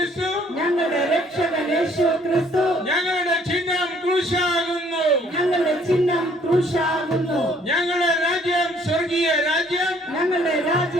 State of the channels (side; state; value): both; normal; correlation 0.61